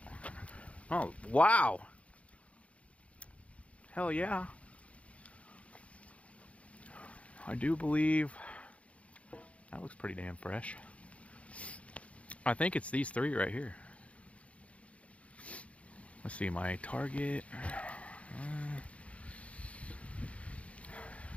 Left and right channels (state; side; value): late; right; 0.064 ms